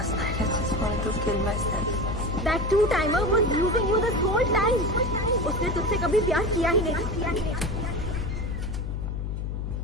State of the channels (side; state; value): left; noise; hum, 3 dB below the sound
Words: night I just wanted to kill myself. That two-timer was using you this whole time. उसने तुझसे कभी प्यार किया ही नहीं।